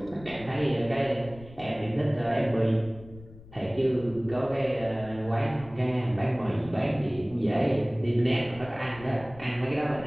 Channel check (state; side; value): noise; left; rumble, 19 dB below the sound